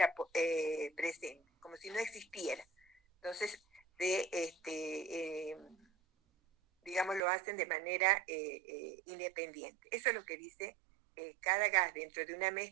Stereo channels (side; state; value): left; drops out; at 7.2 s